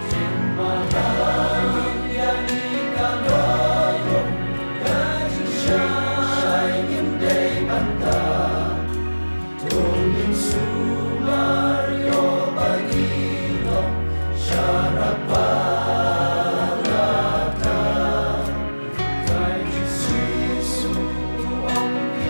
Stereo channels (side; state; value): both; inverted; correlation -1.00